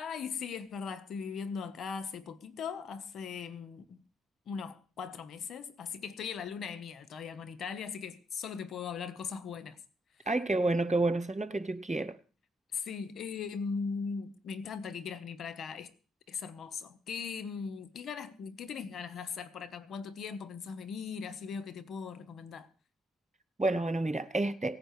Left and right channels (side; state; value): both; normal; correlation 0.75